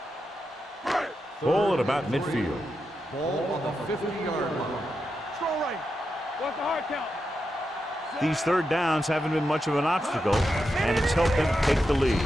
Ball at about midfield. Ball on the 50-yard line. Strong right. What's the hard count? These third downs haven't been much of an obstacle, and it's helped them take the lead.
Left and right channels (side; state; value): both; normal; correlation 0.87